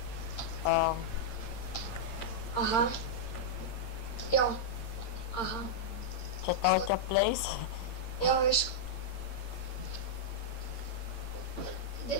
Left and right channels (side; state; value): right; late; 8.8 ms